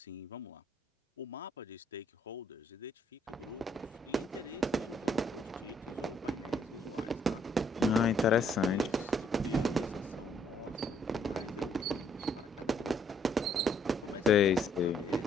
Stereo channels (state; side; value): normal; both; correlation 0.68